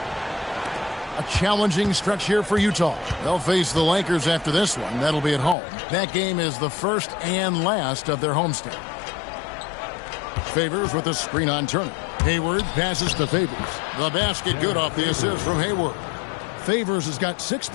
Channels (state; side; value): drops out; right; at 5.6 s